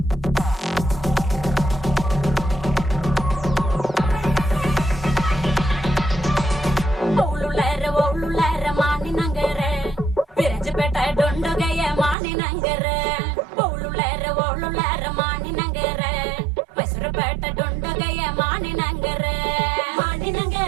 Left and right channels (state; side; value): drops out; left; at 12.2 s